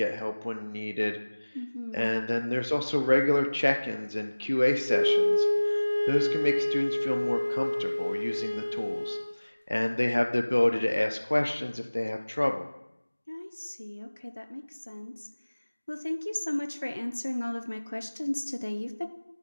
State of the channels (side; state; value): both; inverted; correlation -1.00